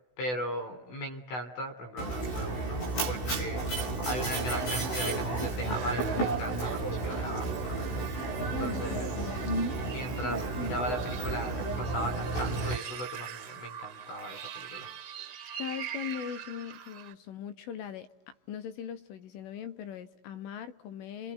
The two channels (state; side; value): late; right; 16 ms